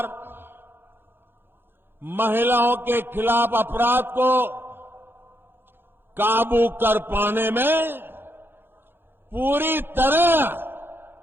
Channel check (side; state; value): left; late; 0.10 ms